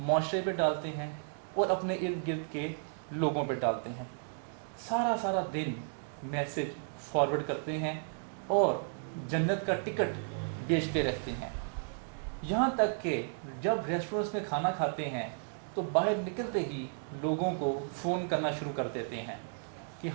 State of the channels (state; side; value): silent; left; digital silence